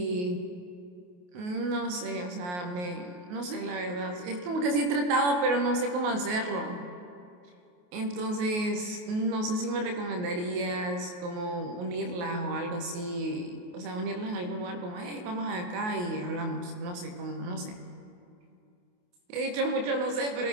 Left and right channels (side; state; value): left; late; 28 ms